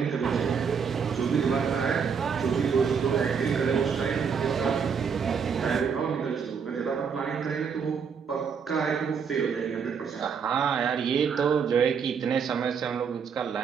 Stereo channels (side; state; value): left; quieter; 6.4 dB